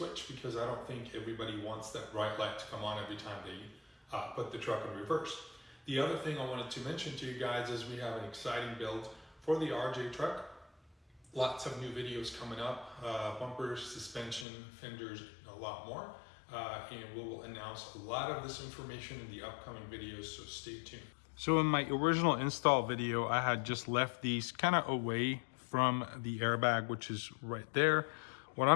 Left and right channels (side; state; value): right; drops out; at 14.5 s